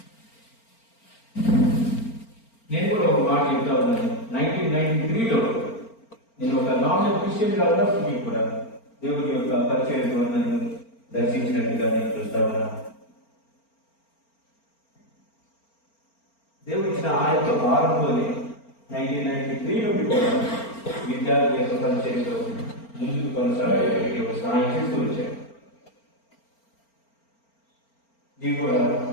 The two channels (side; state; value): right; late; 4.4 ms